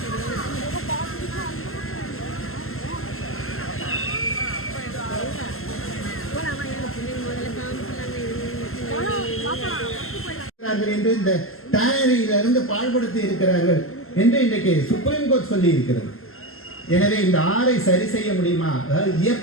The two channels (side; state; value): right; late; 0.62 ms